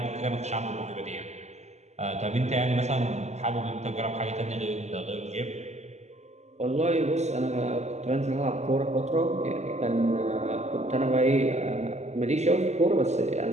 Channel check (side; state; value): left; late; 0.33 ms